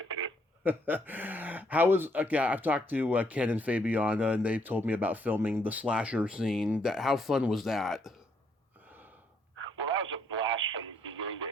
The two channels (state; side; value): normal; both; correlation 0.71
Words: How was, I've talked to Ken and Fabiana, and they've told me about filming the slasher scene. How fun was that? Well, that was a blast from beginning to